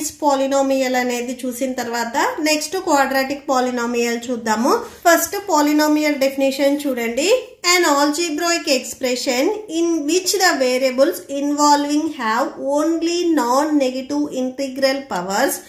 polynomial అనేది చూసిన తర్వాత నెక్స్ట్ quadratic polynomial చూద్దాము. ఫస్ట్ polynomial definition చూడండి. An algebraic expression in which the variables involving have only non-negative integral powers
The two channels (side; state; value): both; identical; correlation 1.00